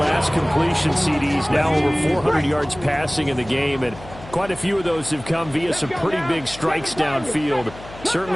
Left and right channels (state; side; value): noise; left; hum, 17 dB below the sound